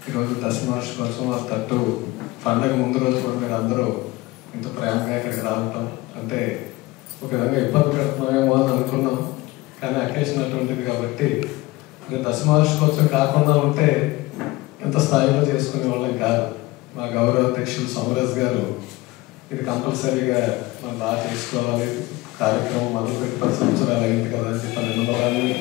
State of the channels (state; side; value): quieter; right; 20.1 dB